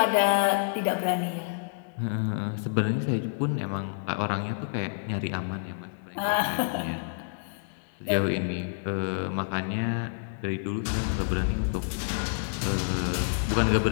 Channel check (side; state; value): right; silent; digital silence